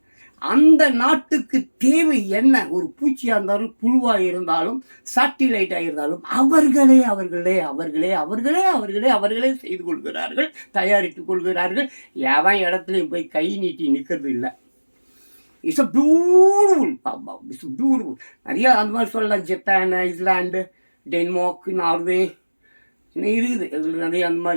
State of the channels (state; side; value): inverted; both; correlation -1.00